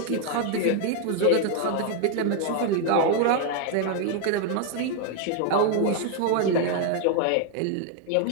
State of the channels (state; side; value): different; both; correlation 0.00